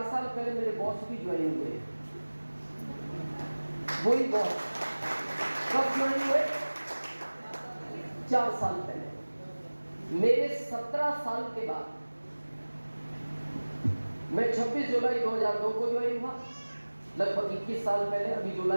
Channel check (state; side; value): inverted; both; correlation -1.00